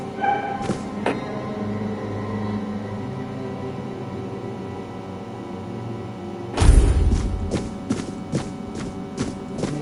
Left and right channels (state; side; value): identical; both; correlation 1.00